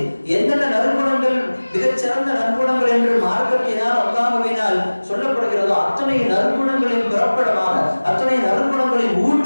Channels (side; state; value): both; inverted; correlation -1.00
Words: எந்தெந்த நற்குணங்கள் மிகச்சிறந்த நற்குணங்கள் என்று மார்க்கத்தினால் அல்லாஹ்வினால் சொல்லப்படுகிறதோ அத்தனை நற்குணங்களின் பிறப்பிடமாக, அத்தனை நற்குணங்களின்